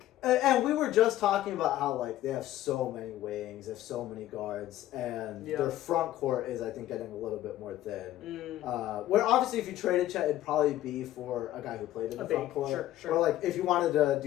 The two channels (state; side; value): quieter; right; 13.9 dB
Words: And we were just talking about how, like, they have so many wings, they have so many guards, and their front court is, I think, getting a little bit more thin. Where, obviously, if you traded Chet, it'd probably be for a guy who played in the front court. Sure. Or, like, if you wanted to